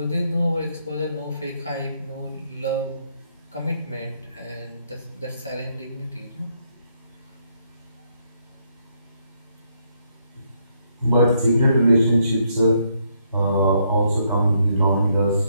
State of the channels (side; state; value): both; inverted; correlation -0.74